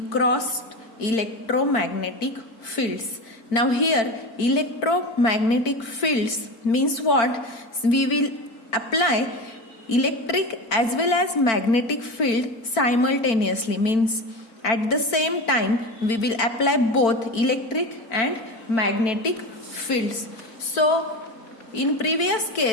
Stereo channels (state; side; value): late; right; 4.5 ms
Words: crossed electromagnetic fields. Now here electromagnetic fields means what? We will apply electric as well as magnetic field simultaneously, means at the same time we will apply both electric and magnetic fields. So in previous